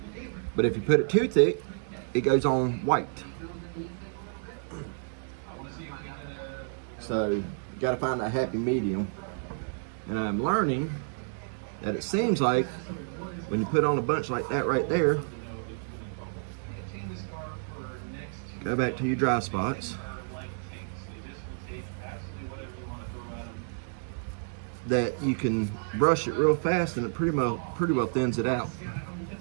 But if you put it too thick, it goes on white. So you gotta find that happy medium. And I'm learning that it seems like when you put on a bunch like that right there, go back to your dry spots, that you can brush it real fast and it pretty well thins it out.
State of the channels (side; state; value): left; silent; digital silence